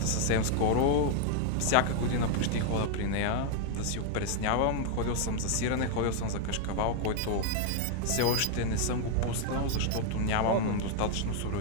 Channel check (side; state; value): both; different; correlation 0.00